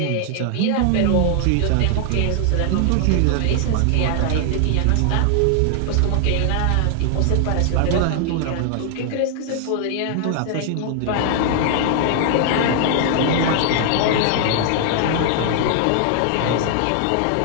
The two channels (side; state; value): both; different; correlation 0.00